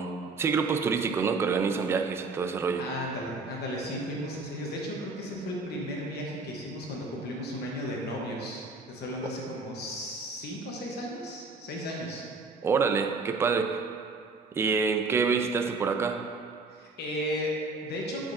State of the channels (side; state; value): left; quieter; 3.6 dB